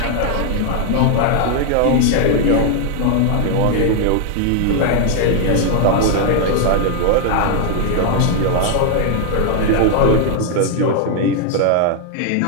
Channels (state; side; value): different; both; correlation 0.00